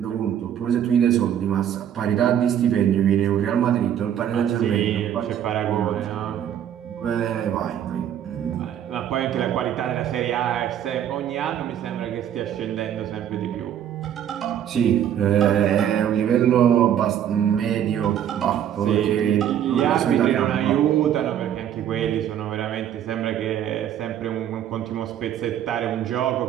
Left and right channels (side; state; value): left; quieter; 10.0 dB